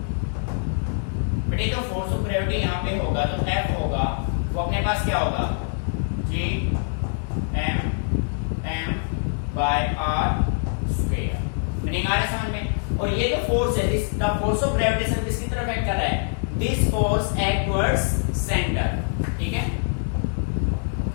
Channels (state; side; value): silent; right; digital silence